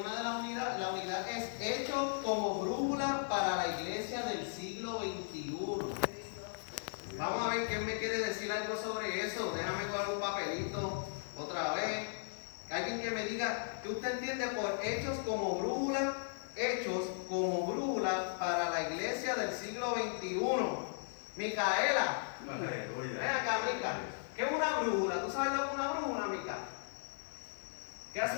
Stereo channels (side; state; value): right; silent; digital silence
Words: una de las unidades, la unidad es Hechos como brújula para la iglesia del siglo XXI. Vamos a ver quién me quiere decir algo sobre eso. Déjame coger un papelito otra vez. Alguien que me diga, ¿qué usted entiende por hechos como brújula? Hechos como brújula para la iglesia del siglo XXI. Micaela, ven acá, Mica. ¿Qué es una brújula? ¿Tú sabes lo que es una brújula, Mica? ¿Qué hace